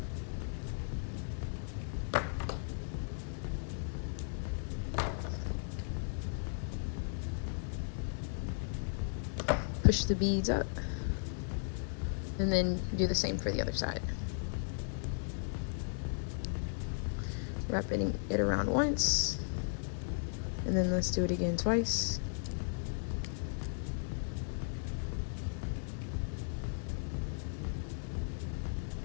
Push the beads up, and then do the same for the other side. Wrapping it around once, and then let's do it again twice.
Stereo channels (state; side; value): silent; right; digital silence